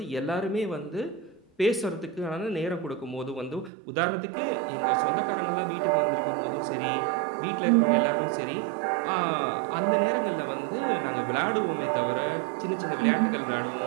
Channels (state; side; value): drops out; left; at 3.7 s